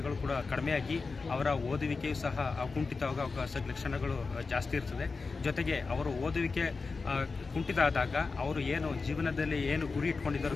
ಕೂಡ ಕಡಿಮೆಯಾಗಿ ಅವರ ಓದುವಿಕೆಯು ಸಹ ಕುಂಠಿತವಾಗ ಲಕ್ಷಣಗಳು ಜಾಸ್ತಿ ಇರ್ತದೆ. ಜೊತೆಗೆ ಅವರು ಓದುವಿಕೆ ಕುಂಠಿತ ಆದಾಗ ಅವರು ಏನು ಜೀವನದಲ್ಲಿ ಏನು ಗುರಿ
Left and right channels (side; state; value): right; quieter; 4.3 dB